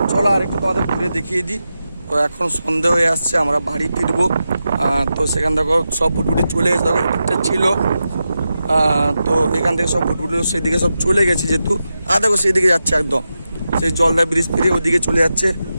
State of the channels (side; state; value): both; inverted; correlation -0.90